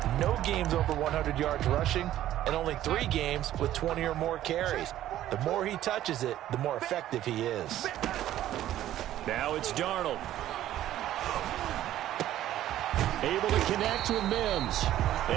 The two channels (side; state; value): left; quieter; 13.0 dB